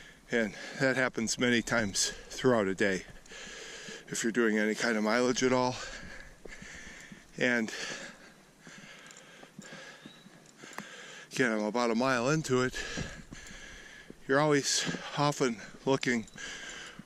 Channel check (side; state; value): both; identical; correlation 1.00